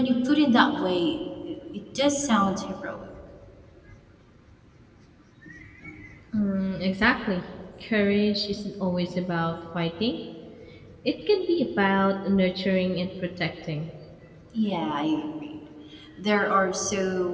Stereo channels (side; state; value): both; identical; correlation 1.00